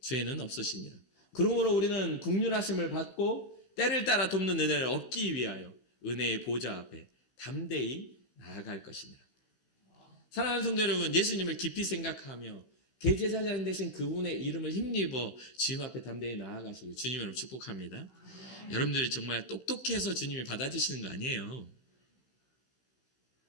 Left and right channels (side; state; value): right; late; 16 ms